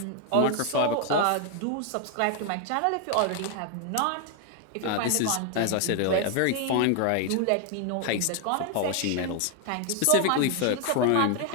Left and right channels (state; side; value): different; both; correlation 0.01